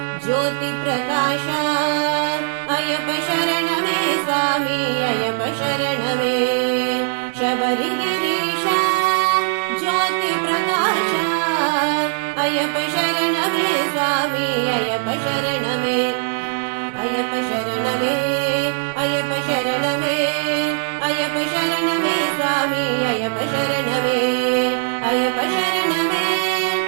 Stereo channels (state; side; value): silent; left; 66 dB below the other